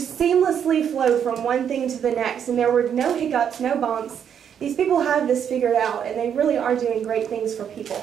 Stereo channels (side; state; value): left; quieter; 8.4 dB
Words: seamlessly flowed from one thing to the next, and there were no hiccups, no bumps. These people have this figured out, and they really are doing great things for